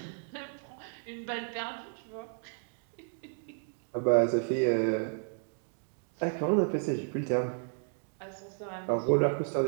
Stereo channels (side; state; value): left; silent; 56 dB below the other